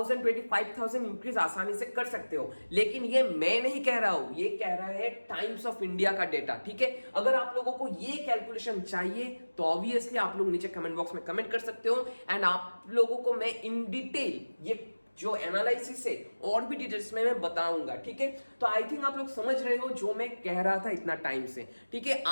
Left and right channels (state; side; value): inverted; both; correlation -1.00